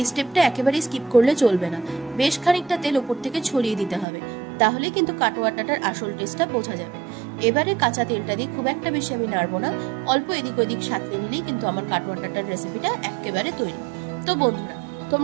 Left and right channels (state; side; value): drops out; left; at 4.0 s